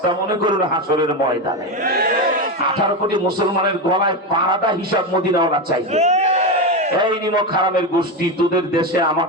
মনে করুন হাসরের ময়দানে 18 কোটি মুসলমানের গলায় পাড়াটা হিসাব মদিনাওয়ালা চাইবে। এই নিমক হারামের গোষ্ঠী, তোদের দেশে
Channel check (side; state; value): both; normal; correlation 0.14